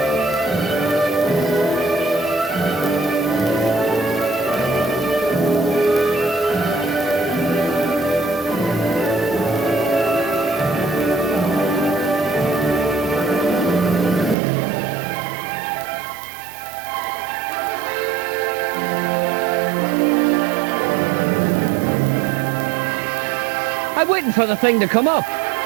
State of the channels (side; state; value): left; drops out; at 14.4 s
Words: I'm waiting for the thing to come up.